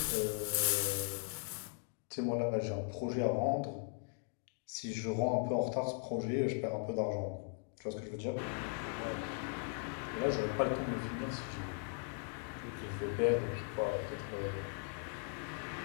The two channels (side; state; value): right; silent; 52 dB below the other